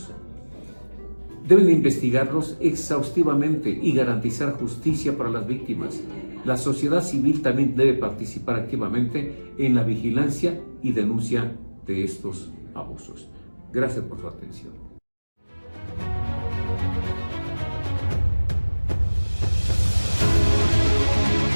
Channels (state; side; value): inverted; both; correlation -1.00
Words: Deben investigarlos exhaustivamente y garantizar justicia para las víctimas. La sociedad civil también debe participar activamente en la vigilancia y denuncia de estos abusos. Gracias por su atención.